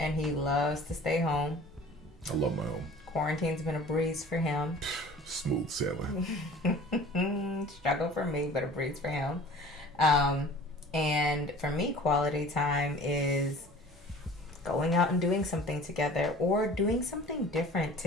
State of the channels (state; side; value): normal; both; correlation 0.45